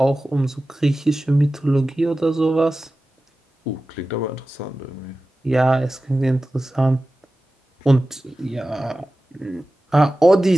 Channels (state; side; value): normal; both; correlation 0.95